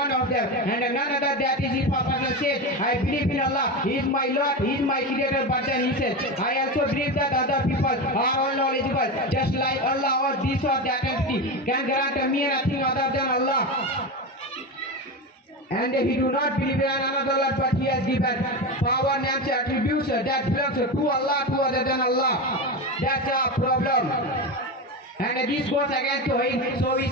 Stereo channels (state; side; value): normal; both; correlation 0.19